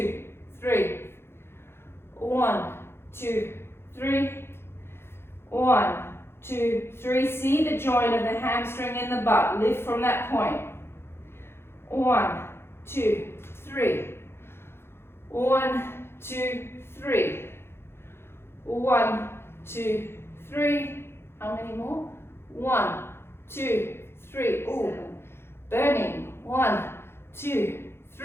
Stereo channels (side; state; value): right; late; 0.12 ms